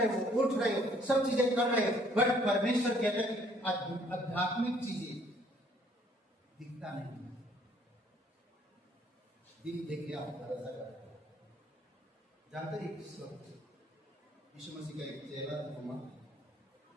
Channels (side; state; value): both; normal; correlation 0.62